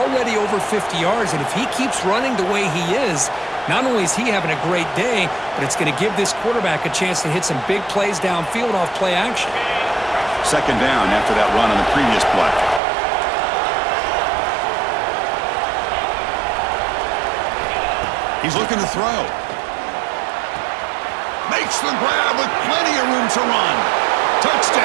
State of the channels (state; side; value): drops out; left; at 12.8 s